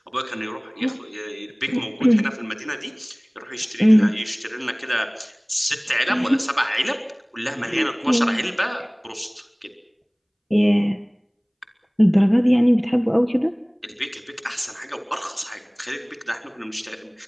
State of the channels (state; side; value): identical; both; correlation 1.00